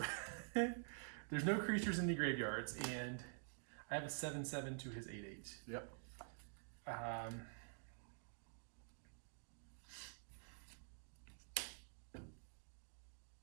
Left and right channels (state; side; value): silent; left; digital silence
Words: there's no creatures in the graveyards, and I have a 7/7 to his 8/8. Yep.